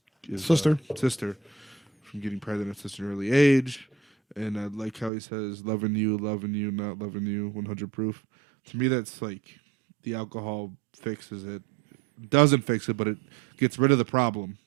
sister from getting pregnant at an early age. And I like how he says loving you, not loving you, 100 proof. To me, that's like the alcohol fixes it. Doesn't fix it, but it gets rid of the problem.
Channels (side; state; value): left; drops out; at 5.1 s